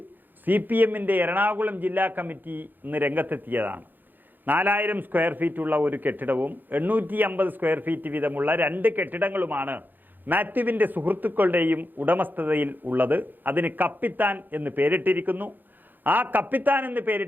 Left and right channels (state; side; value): late; left; 0.088 ms